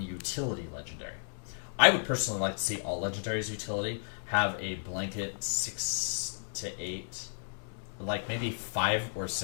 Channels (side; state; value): right; silent; digital silence